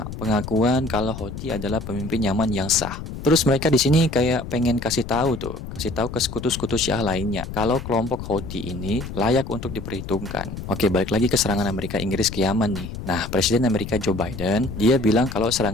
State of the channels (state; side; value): noise; left; rumble, 9 dB below the sound